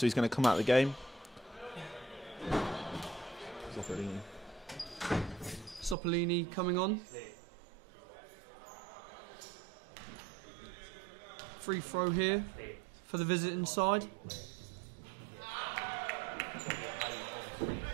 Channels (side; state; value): left; drops out; at 6.0 s